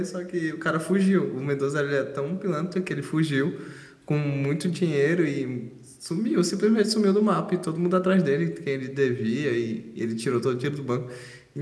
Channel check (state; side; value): identical; both; correlation 1.00